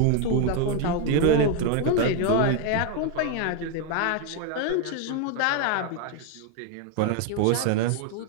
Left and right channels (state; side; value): different; both; correlation 0.01